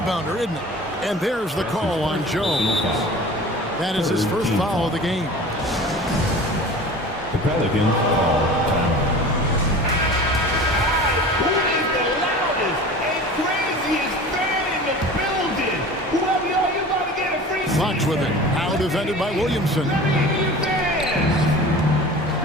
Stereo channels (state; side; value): normal; both; correlation 0.39